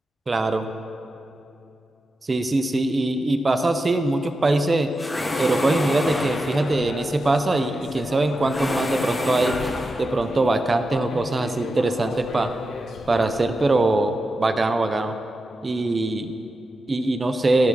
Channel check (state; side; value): normal; both; correlation 0.90